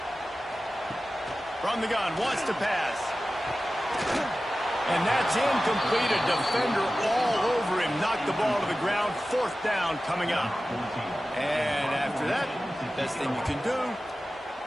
From the gun, wants to pass. And that's incomplete. A defender all over him. Knocked the ball to the ground. 4th down coming up. And after that, best thing you can do,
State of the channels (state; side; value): normal; both; correlation 0.95